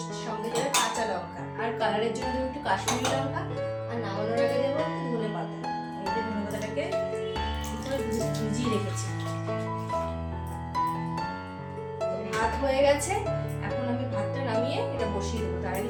সঙ্গে দেবে কাঁচা লঙ্কা, আর কালারের জন্য দেবো একটু কাশ্মীরি লঙ্কা, আর নামানোর আগে দেবো একটু ধনে পাতা। এই যে ধনে পাতাটাকে ভিজিয়ে রেখেছি। তো ভাত হয়ে গেছে, এখন আমি ভাতটা নামিয়ে এটা বসিয়ে দেবো। তার আগে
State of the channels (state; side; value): identical; both; correlation 1.00